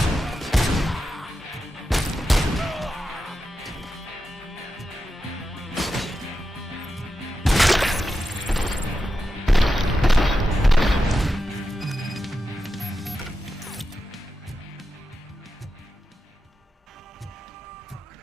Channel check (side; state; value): both; normal; correlation 0.90